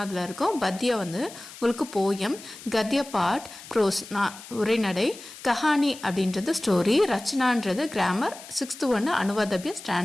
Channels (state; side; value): noise; left; hiss, 16 dB below the sound